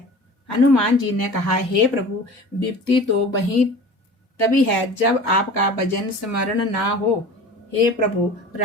हनुमान जी ने कहा, हे प्रभु, विपत्ति तो वही तभी है जब आपका भजन स्मरण ना हो। हे प्रभु,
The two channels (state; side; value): normal; both; correlation 0.39